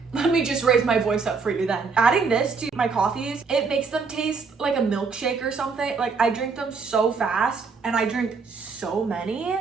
let me just raise my voice up for you then. Adding this to my coffees, it makes them taste like a milkshake or something. Like I drink them so fast and I drink so many.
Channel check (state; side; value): quieter; left; 4.9 dB